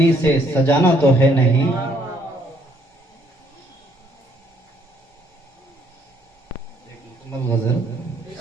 سے سجانا تو ہے نہیں۔ غزل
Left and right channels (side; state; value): both; normal; correlation 0.66